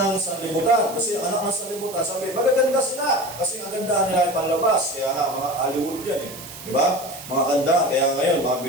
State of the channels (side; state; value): right; noise; hiss, 14 dB below the sound